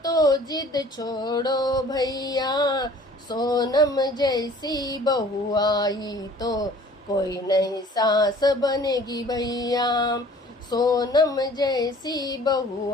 तो जिद छोड़ो भैया। सोनम जैसी बहू आई तो कोई नई सास बनेगी भैया। सोनम जैसी बहू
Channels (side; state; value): both; normal; correlation 0.50